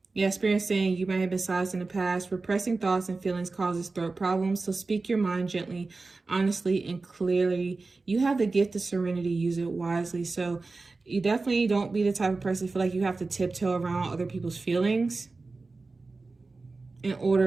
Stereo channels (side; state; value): left; quieter; 3.7 dB